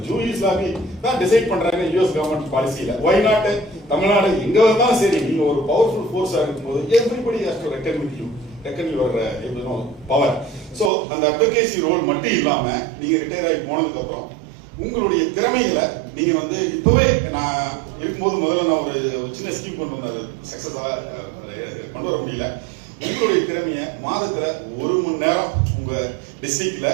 ஜூரிஸ் லாபி தான் டிசைட் பண்றாங்க US கவர்மெண்ட் பாலிசியில. ஒய் நாட் தமிழ்நாடு எங்க வந்தாலும் சரி, நீங்க ஒரு பவர்ஃபுல் ஃபோர்ஸா இருக்கும்போது everybody has to reckon with you, reckon your power. So அந்த அட்வொகேசி ரோல் மட்டும் இல்லாம நீங்க ரிட்டையர் ஆகி போனதுக்கு அப்புறம் உங்களுடைய திறமைகளை நீங்க வந்து இப்பவே நான் இருக்கும்போது முதல்ல நான் ஒரு சின்ன ஸ்கீம் கொண்டு வந்தாரு, சக்சஸா கொண்டு வர முடியல. உங்களுடைய திறமைய மாதத்துல 1 மணி நேரம் உங்க டிஸ்ட்ரிக்ட்ல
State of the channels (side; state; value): left; drops out; at 10.9 s